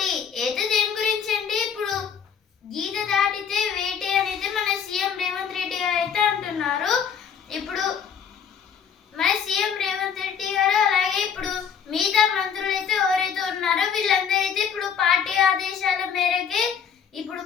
అయితే దేని గురించి అండి? ఇప్పుడు గీత దాటితే వేటే అనేది మన సీఎం రేవంత్ రెడ్డి గారు అయితే అంటున్నారు. ఇప్పుడు మన సీఎం రేవంత్ రెడ్డి గారు అలాగే ఇప్పుడు మిగతా మంత్రులు అయితే ఎవరైతే ఉన్నారో వీళ్ళందరూ అయితే ఇప్పుడు పార్టీ ఆదేశాల మేరకే ఇప్పుడు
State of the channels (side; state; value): right; quieter; 7.3 dB